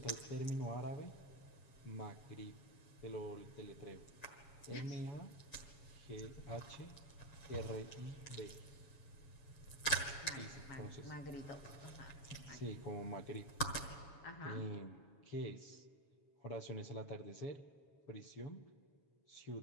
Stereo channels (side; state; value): right; late; 7.1 ms